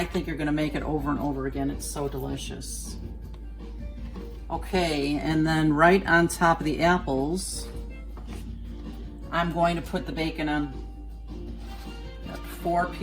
think you're gonna make it over and over again. It's so delicious. Okay, and then right on top of the apples, I'm going to put the bacon on. Got 4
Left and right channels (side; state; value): both; identical; correlation 1.00